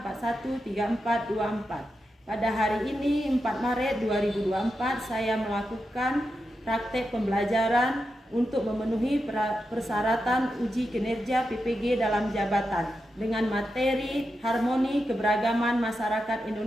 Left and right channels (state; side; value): normal; both; correlation 0.88